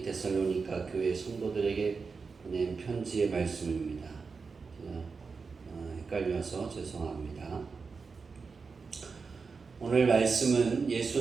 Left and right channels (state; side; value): quieter; left; 4.9 dB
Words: 데살로니가 교회 성도들에게 보낸 편지의 말씀입니다. 헷갈려서 죄송합니다. 오늘 말씀은